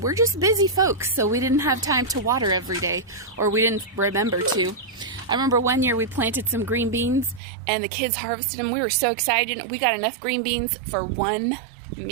we're just busy folks, so we didn't have time to water every day, or we didn't remember to. I remember one year we planted some green beans and the kids harvested them. We were so excited. We got enough green beans for one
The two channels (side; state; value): left; drops out; at 7.4 s